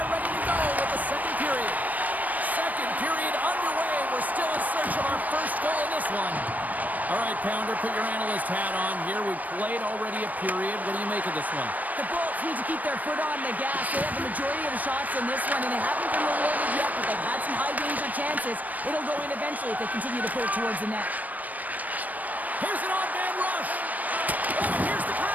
ready to go with the second period. Second period underway. We're still in search of our first goal in this one. All right, Pounder, put your analyst hat on here. We've played already a period. What do you make of this one? The Bolts need to keep their foot on the gas. They have the majority of the shots in this one, and they haven't been rewarded yet, but they've had some high-danger chances. It'll go in eventually if they continue to put it towards the net. Here's an on-man rush. Oh, here's the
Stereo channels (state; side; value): late; left; 0.078 ms